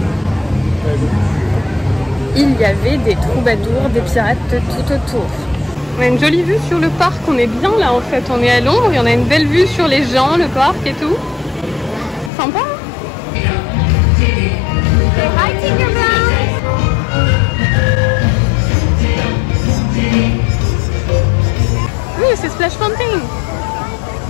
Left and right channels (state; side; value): drops out; right; at 12.3 s